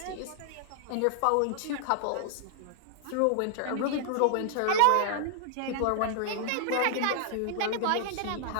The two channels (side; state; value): both; different; correlation -0.01